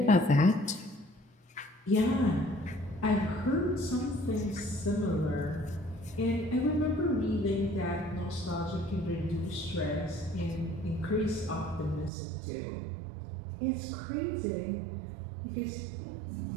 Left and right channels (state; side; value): drops out; left; at 12.1 s